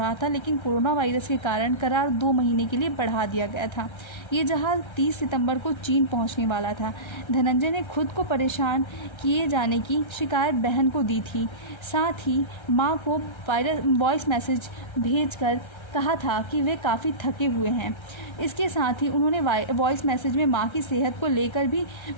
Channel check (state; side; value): late; right; 1.3 ms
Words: था, लेकिन कोरोना वायरस के कारण करार 2 महीने के लिए बढ़ा दिया गया था। ये जहाज़ 30 सितंबर को चीन पहुंचने वाला था। धनंजय ने खुद को परेशान किए जाने की शिकायत बहन को दी थी। साथ ही मां को वॉइस मैसेज भेजकर कहा था कि वे काफ़ी थके हुए हैं। इसके साथ ही उन्होंने वॉइस मैसेज में मां की सेहत को लेकर भी